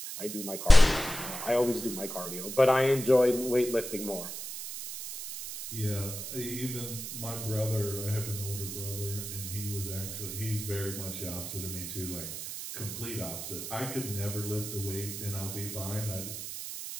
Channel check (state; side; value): noise; right; hiss, 7 dB below the sound